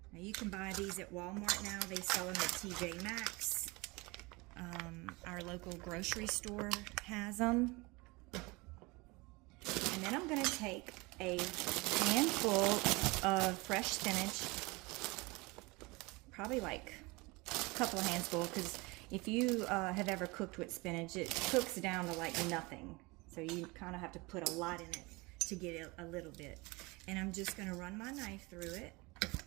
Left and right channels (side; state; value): left; quieter; 24.9 dB